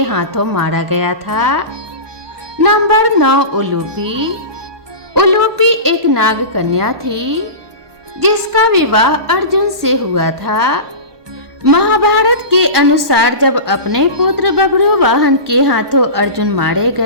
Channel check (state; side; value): late; left; 1.2 ms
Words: हाथों मारा गया था। नंबर 9 उलूपी। उलूपी एक नाग कन्या थी, जिसका विवाह अर्जुन से हुआ था। महाभारत के अनुसार जब अपने पुत्र बब्रू वाहन के हाथों अर्जुन मारे